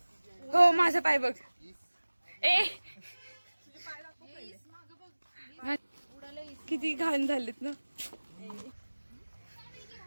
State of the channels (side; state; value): both; inverted; correlation -1.00